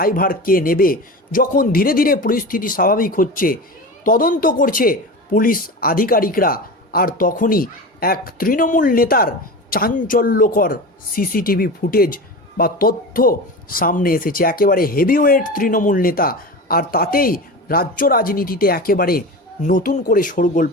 কে নেবে? যখন ধীরে ধীরে পরিস্থিতি স্বাভাবিক হচ্ছে, তদন্ত করছে পুলিশ আধিকারিকরা, আর তখনই এক তৃণমূল নেতার চাঞ্চল্যকর সিসিটিভি ফুটেজ বা তথ্য সামনে এসেছে। একেবারে হেভিওয়েট তৃণমূল নেতা, আর তাতেই রাজ্য রাজনীতিতে একেবারে নতুন করে শোরগোল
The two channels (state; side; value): normal; both; correlation 0.28